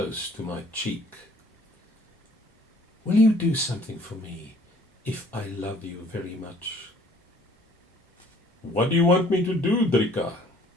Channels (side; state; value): both; normal; correlation 0.57